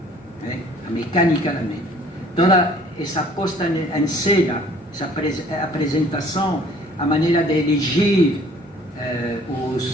a mecânica da mídia. Toda essa posta em cena, essa apresentação, a maneira de elegir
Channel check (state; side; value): normal; both; correlation 0.55